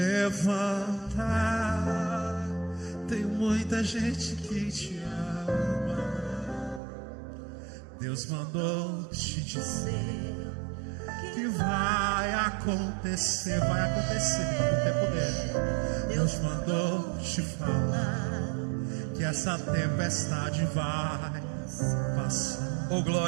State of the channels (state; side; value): drops out; left; at 6.8 s